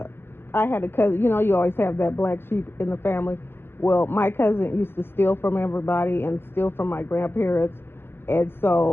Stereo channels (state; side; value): late; right; 0.11 ms